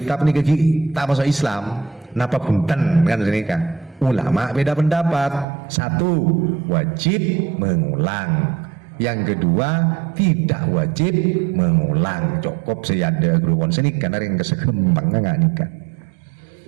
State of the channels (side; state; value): left; drops out; at 5.5 s